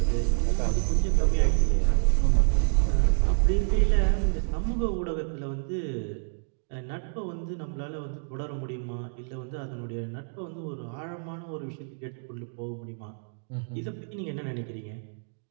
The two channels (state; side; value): silent; left; digital silence